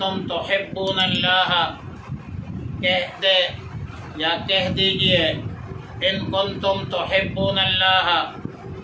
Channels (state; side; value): identical; both; correlation 1.00